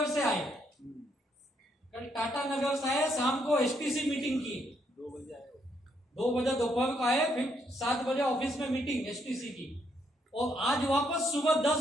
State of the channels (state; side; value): normal; both; correlation 0.74